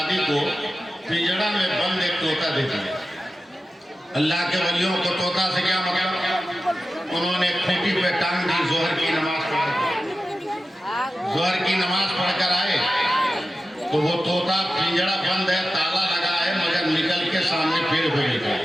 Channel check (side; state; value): both; normal; correlation 0.93